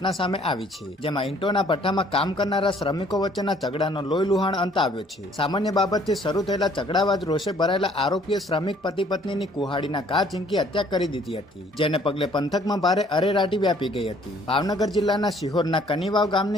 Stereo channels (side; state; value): both; normal; correlation 0.60